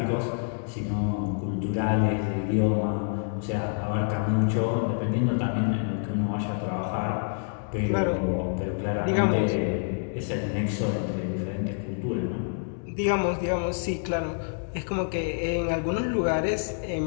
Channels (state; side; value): silent; right; digital silence